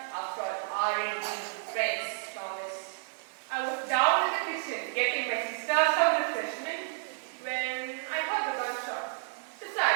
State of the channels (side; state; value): left; silent; digital silence